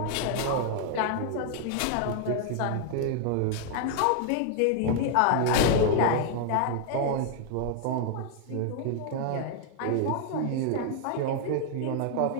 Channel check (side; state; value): both; different; correlation 0.00